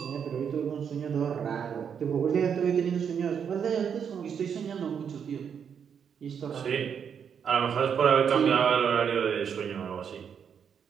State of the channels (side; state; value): left; quieter; 7.5 dB